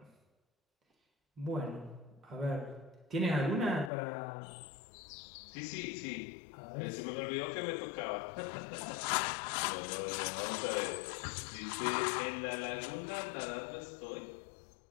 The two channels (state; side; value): drops out; right; at 3.9 s